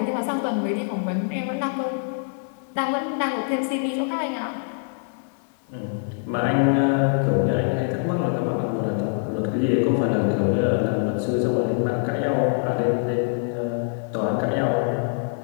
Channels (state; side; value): silent; right; 62 dB below the other